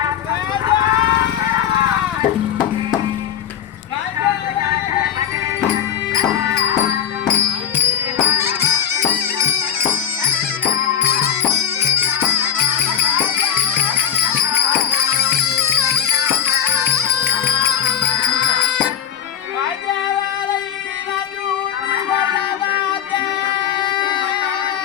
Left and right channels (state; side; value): quieter; right; 9.2 dB